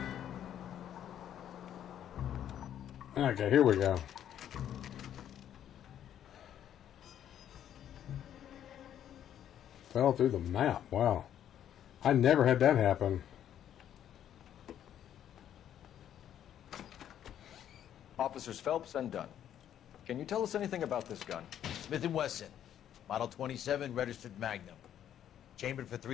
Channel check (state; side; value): quieter; right; 10.4 dB